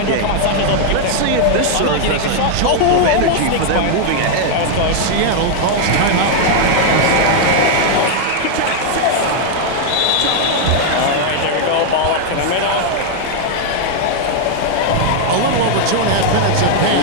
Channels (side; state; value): both; different; correlation 0.00